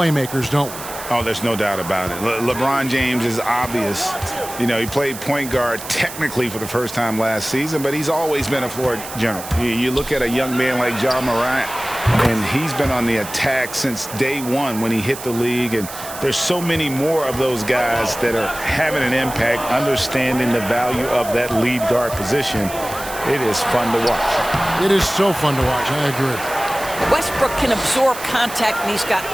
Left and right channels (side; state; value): right; noise; hiss, 12 dB below the sound